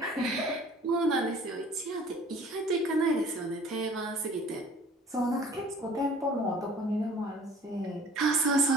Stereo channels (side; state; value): both; normal; correlation 0.50